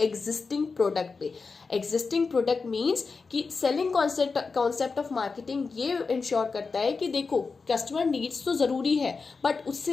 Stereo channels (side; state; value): right; quieter; 4.6 dB